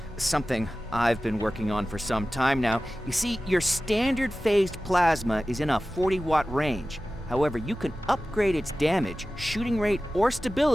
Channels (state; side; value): normal; both; correlation 0.96